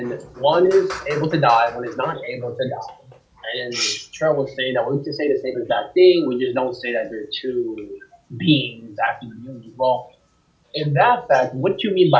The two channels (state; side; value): identical; both; correlation 1.00